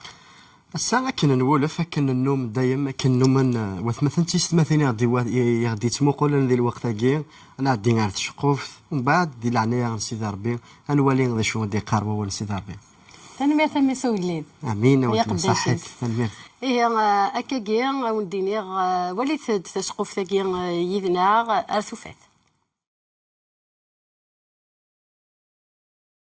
الساعة كاين نولف كاين النوم دايما كاين نوم وثمثلا تيستمثيني غادي تمقولن ذي الوقت كي انا غادي نعرف شقوف ومن بعد دي العناية نسيدي ربي نولي غادي شو غادي قاربوا ونسيدي ربي تنمير تمي سويلين امين وانت صحيت تنمير إيه أكاكي ونديني وليت تشقف ثاكي يدنا أرثوفات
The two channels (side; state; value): both; identical; correlation 1.00